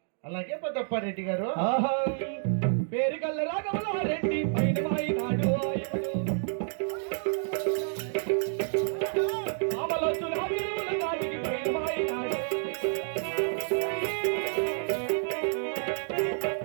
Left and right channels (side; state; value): left; silent; digital silence